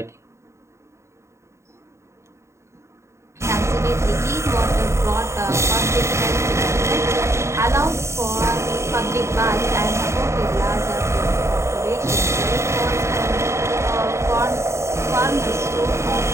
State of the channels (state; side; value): late; left; 0.14 ms